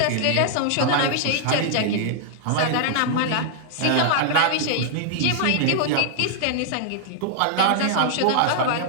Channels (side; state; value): both; different; correlation -0.01